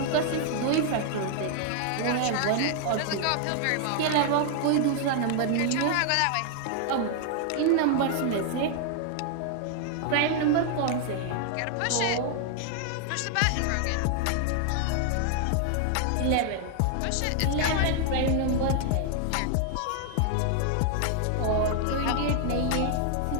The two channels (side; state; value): both; different; correlation 0.00